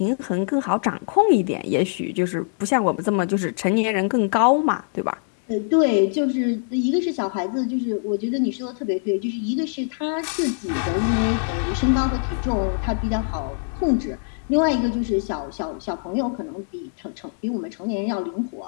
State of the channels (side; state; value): right; silent; 63 dB below the other